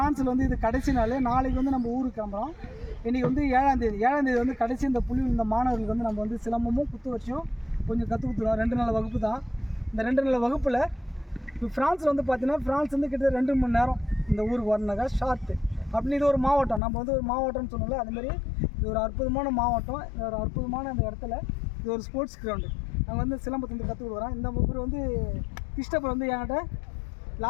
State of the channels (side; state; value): right; drops out; at 16.8 s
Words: வந்து இது கடைசி நாள். நாளைக்கு வந்து நம்ம ஊருக்கு கிளம்புறோம். இன்றைக்கி வந்து 7ஆம் தேதி வந்து கடைசி இந்த புள்ளியில் இந்த மாணவர்களுக்கு வந்து நம்ம வந்து சிலம்பமும் குத்து வச்சும் கொஞ்சம் கற்றுக் கொடுத்துருவோம். 2 நாள் வகுப்பு தான். இந்த 2 நாள் வகுப்பில் இப்போ ஃப்ரான்ஸில் வந்து பார்த்தீங்கன்னா ஃப்ரான்ஸ் வந்து கிட்டத்தட்ட 2 மணி நேரம் இந்த ஊருக்கு வரணுனாக்கா ஷார்ட்டு அப்படின்னு. இது ஒரு மாவட்டம், நம்ம வந்து ஒரு மாவட்டம்னு சொன்னோம்ல, அதுமாரி இது ஒரு அற்புதமான மாவட்டம். இது ஒரு அற்புதமான அந்த இடத்துல இது ஒரு ஸ்போர்ட்ஸ் கிரவுண்டு. நாங்கள் வந்து சிலம்பத்தை வந்து கற்றுக் கொடுக்குறோம். இந்த ஊர் வந்து கிருஷ்ணப்பர் வந்து என்கிட்ட